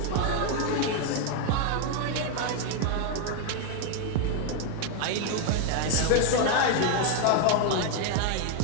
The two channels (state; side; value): different; both; correlation 0.01